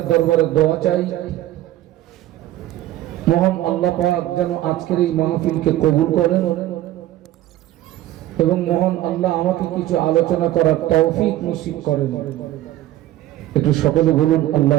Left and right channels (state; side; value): quieter; left; 14.4 dB